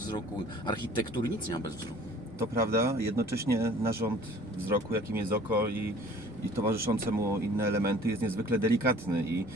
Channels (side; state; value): both; normal; correlation 0.50